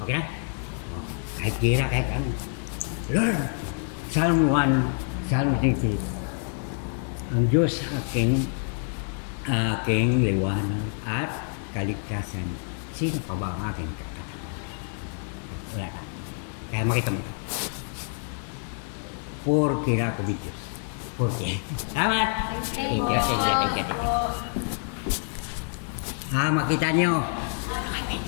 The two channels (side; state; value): right; silent; 60 dB below the other